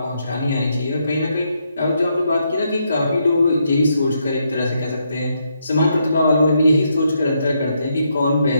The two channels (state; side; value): inverted; both; correlation -0.78